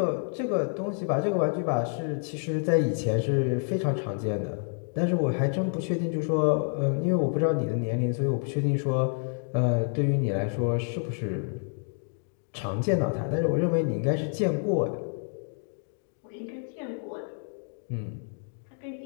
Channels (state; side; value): silent; right; 59 dB below the other